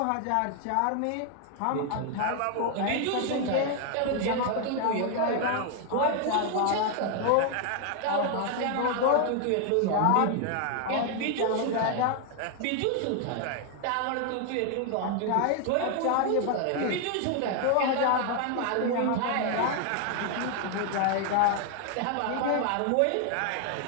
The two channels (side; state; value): both; different; correlation 0.00